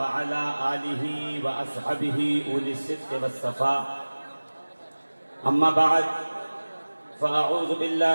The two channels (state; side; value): inverted; both; correlation -1.00